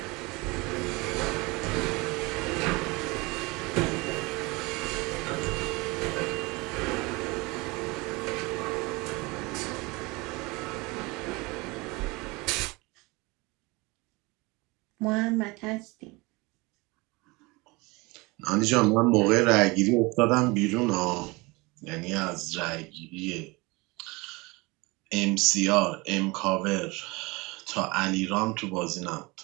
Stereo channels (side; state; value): left; quieter; 24.7 dB